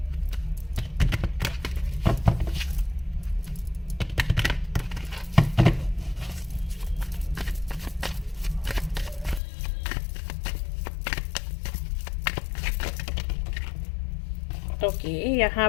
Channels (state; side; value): drops out; right; at 9.4 s